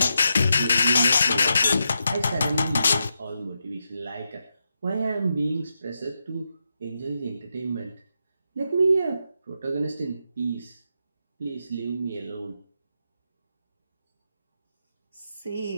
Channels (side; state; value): both; inverted; correlation -0.85